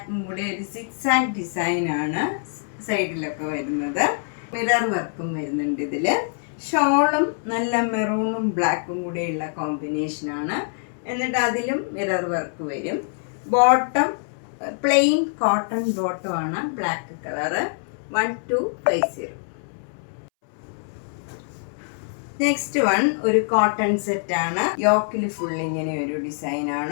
കൂടെ ഒരു സിക്സാക് ഡിസൈനാണ് സൈഡിലൊക്കെ വരുന്നത്. മിറർ വർക്കും വരുന്നുണ്ട് ഇതിൽ. ഷോളും നല്ല മെറൂണും ബ്ലാക്കും കൂടെയുള്ള കോമ്പിനേഷനാണ്. എന്നിട്ട് അതിലും മിറർ വർക്ക് വരും. ബോട്ടം പ്ലെയിൻ കോട്ടൺ ബോട്ടമാണ്, ബ്ലാക്ക് കളറ്. 1250. നെക്സ്റ്റ് വൺ ഒരു കോട്ടൺ സെറ്റാണ്. യോക്കിൽ ഫുൾ ഇങ്ങനെ ഒരു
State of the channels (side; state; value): right; silent; 62 dB below the other